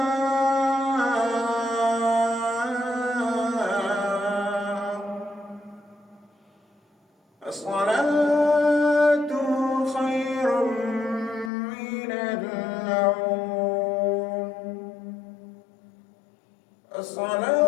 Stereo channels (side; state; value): right; drops out; at 11.5 s